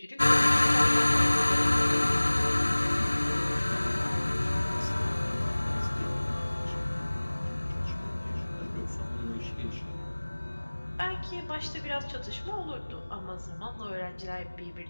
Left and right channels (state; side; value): inverted; both; correlation -1.00